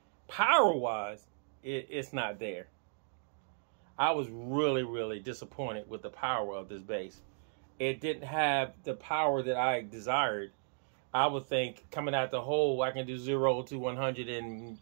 Power-wise, it's not there. I was really, really disappointed with the power of this bass. It didn't have the power that I desired. I would think coming out the hole, I can do 0 to 100 in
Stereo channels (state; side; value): silent; left; digital silence